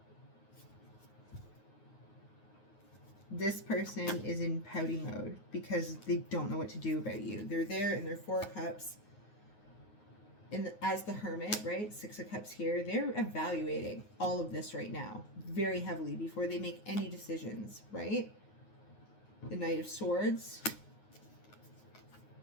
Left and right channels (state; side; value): late; right; 9.5 ms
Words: This person is in pouty mode because they don't know what to do about you. They're there in their Four of Cups as the Hermit, right? Six of Cups here. They're evaluating all of this right now very heavily before they make any decisions, right? The Knight of Swords,